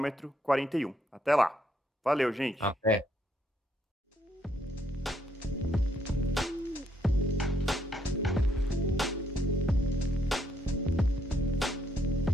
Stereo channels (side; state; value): both; normal; correlation 0.73